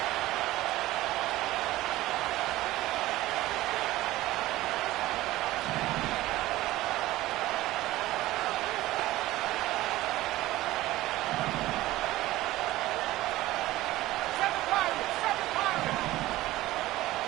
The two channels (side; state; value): left; quieter; 16.8 dB